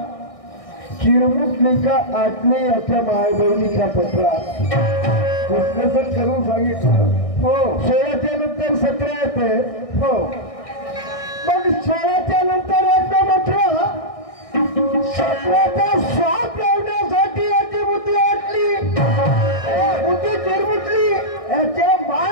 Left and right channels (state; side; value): late; right; 1.6 ms